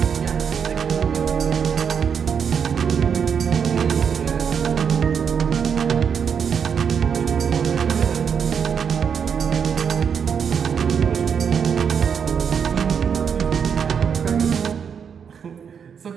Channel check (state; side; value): quieter; left; 7.1 dB